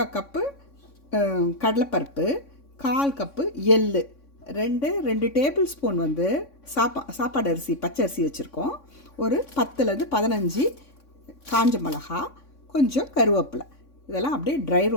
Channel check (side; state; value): right; late; 3.6 ms